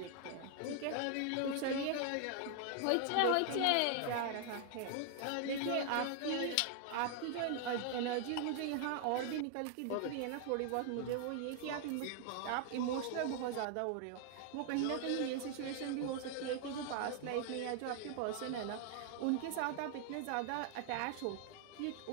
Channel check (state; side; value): different; both; correlation 0.00